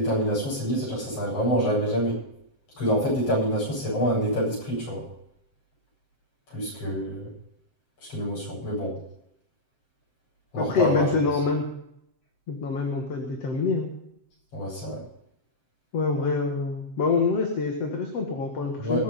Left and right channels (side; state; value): right; late; 7.7 ms